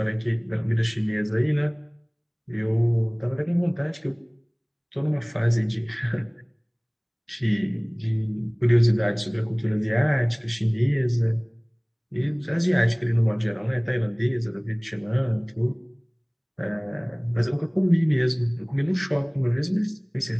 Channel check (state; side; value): identical; both; correlation 1.00